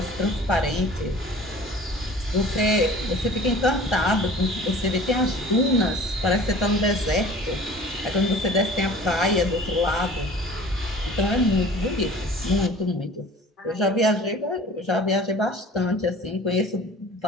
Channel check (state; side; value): normal; both; correlation 0.45